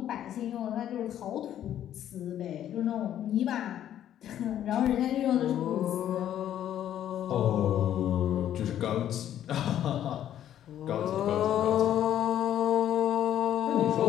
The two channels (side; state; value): right; quieter; 11.0 dB